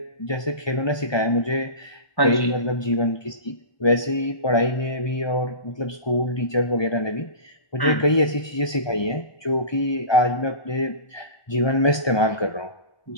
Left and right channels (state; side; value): late; right; 1.2 ms